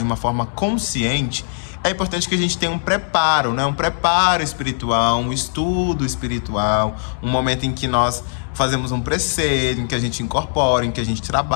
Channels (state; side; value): silent; right; digital silence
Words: uma forma consciente, é importante que a gente tenha um preparo, né? Um preparo espiritual, um estudo espiritual, um momento em que nós fazemos um preceito, em que a gente incorpora, em que a gente